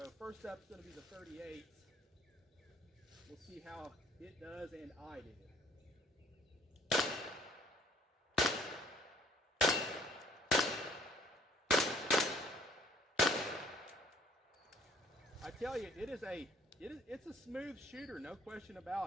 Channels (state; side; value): normal; both; correlation 0.59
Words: first up is going to be the 38s. We'll see how it does and I do. I tell you, it's a smooth shooter, no question